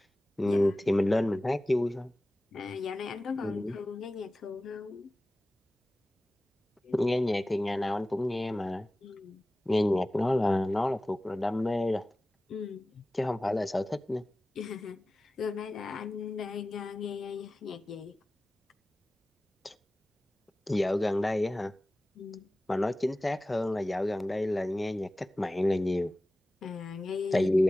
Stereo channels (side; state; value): both; normal; correlation 0.97